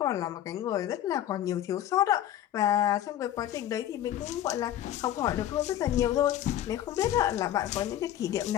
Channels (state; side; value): quieter; right; 11.9 dB